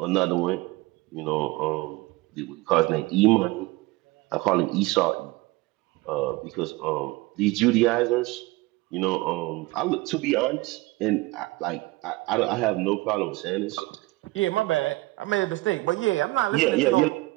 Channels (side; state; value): left; quieter; 21.0 dB